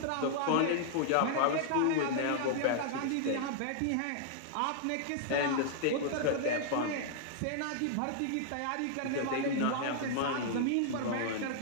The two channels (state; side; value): different; both; correlation -0.01